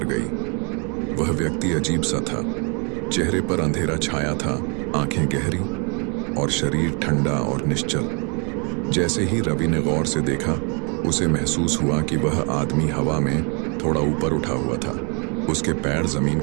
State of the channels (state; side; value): quieter; left; 35.6 dB